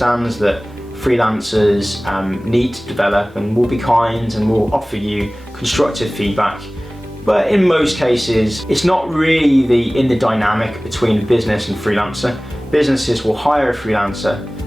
that freelancers need to develop and will be kind and will offer you constructive feedback. But in most cases, it's not really in the dynamic between business and freelancer. Businesses will hire a freelancer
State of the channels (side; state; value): both; normal; correlation 0.98